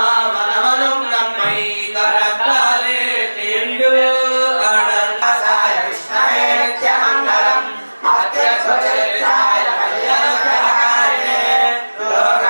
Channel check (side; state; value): both; inverted; correlation -1.00